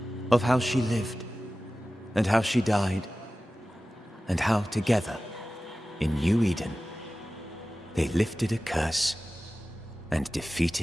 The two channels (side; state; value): both; normal; correlation 0.96